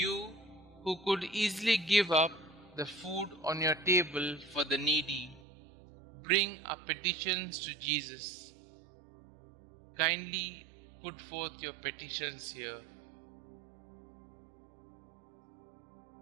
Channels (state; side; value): drops out; left; at 5.4 s